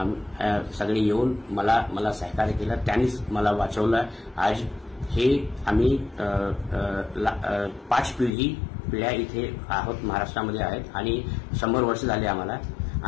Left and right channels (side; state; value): right; drops out; at 8.3 s